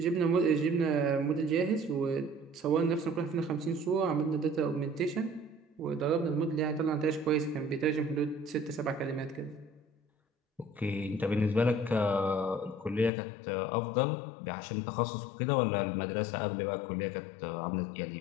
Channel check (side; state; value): right; drops out; at 13.1 s